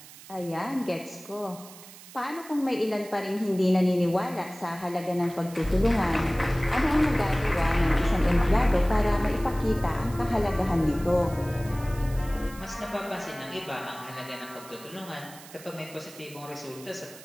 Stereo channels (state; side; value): noise; right; hiss, 18 dB below the sound